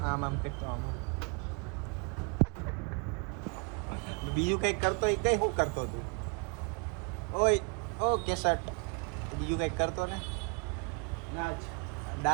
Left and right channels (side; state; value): left; quieter; 34.4 dB